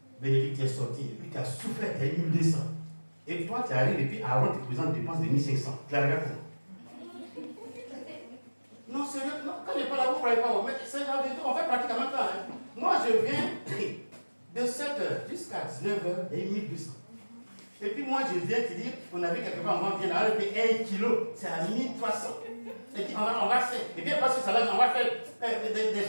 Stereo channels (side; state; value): both; inverted; correlation -1.00